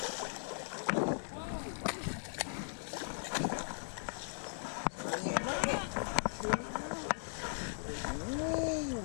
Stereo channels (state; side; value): silent; right; digital silence